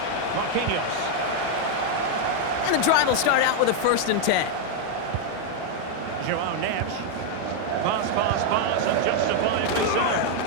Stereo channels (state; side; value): different; both; correlation 0.00